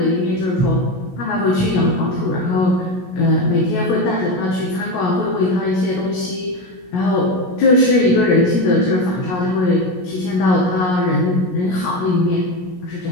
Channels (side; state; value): right; late; 17 ms